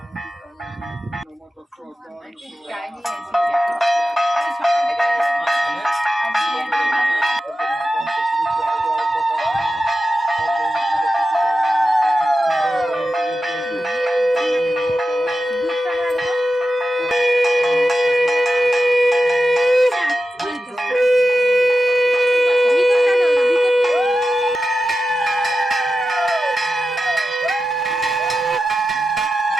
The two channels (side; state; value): both; normal; correlation 0.92